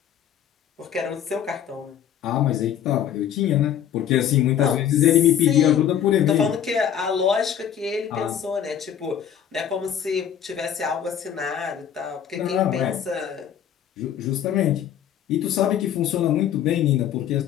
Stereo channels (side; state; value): right; quieter; 9.4 dB